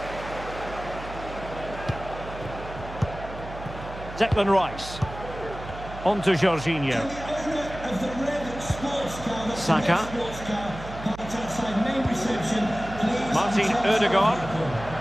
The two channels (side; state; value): right; noise; hum, 12 dB below the sound